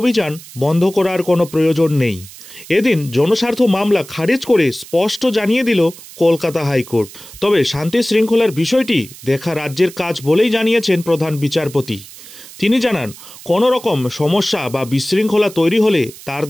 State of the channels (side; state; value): right; noise; hiss, 18 dB below the sound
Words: বন্ধ করার কোনো প্রয়োজন নেই। এদিন জনস্বার্থ মামলা খারিজ করে স্পষ্ট জানিয়ে দিল কলকাতা হাইকোর্ট। তবে শান্তি শৃঙ্খলার বিষয়টি দেখা রাজ্যের কাজ বলেই জানিয়েছেন প্রধান বিচারপতি। তিনি জানান, কোনো রকম সমস্যা বা বিশৃঙ্খলা তৈরি হলে তার